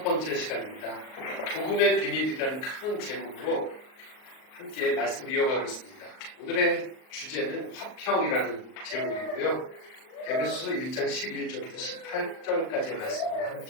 시간입니다. 복음의 비밀이라는 큰 제목으로 함께 말씀을 이어가고 있습니다. 오늘의 주제는 화평이라는 제목이고요. 에베소서 1장 11절부터 18절까지의 말씀을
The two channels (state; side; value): late; right; 39 ms